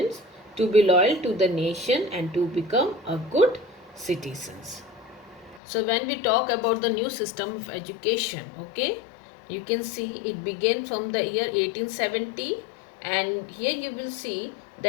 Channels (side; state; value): right; drops out; at 5.6 s